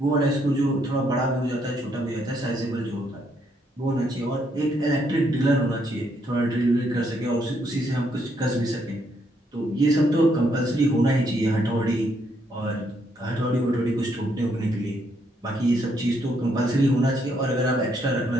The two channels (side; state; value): both; normal; correlation 0.73